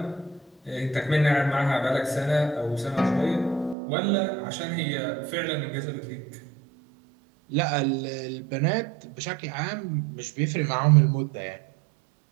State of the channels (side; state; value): left; drops out; at 3.8 s